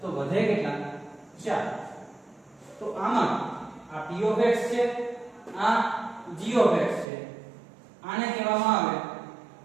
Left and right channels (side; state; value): left; drops out; at 7.1 s